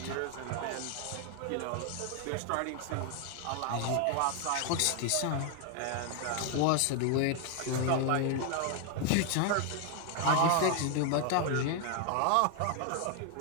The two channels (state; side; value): different; both; correlation 0.00